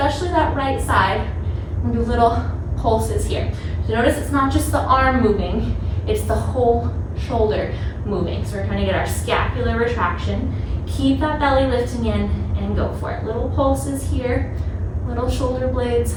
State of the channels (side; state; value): both; identical; correlation 1.00